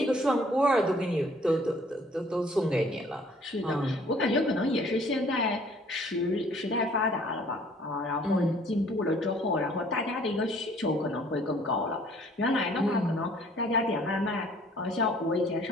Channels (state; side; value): normal; both; correlation 0.57